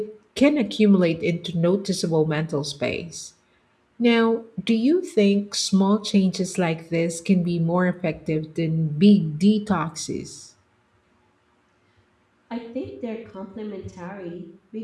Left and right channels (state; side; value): identical; both; correlation 1.00